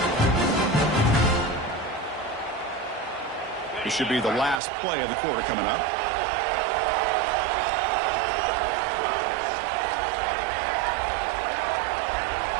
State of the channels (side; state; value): left; drops out; at 4.6 s